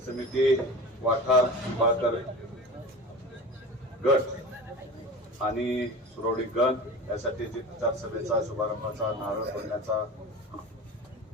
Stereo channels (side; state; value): both; normal; correlation 0.33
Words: समिती वाठार निंबाळकर गट आणि सुरवडी गण यासाठी जी प्रचार सभेचा शुभारंभाचा नारळ फोडण्याचा